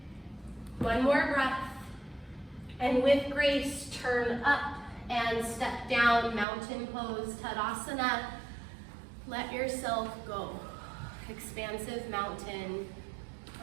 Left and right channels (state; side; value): drops out; left; at 6.5 s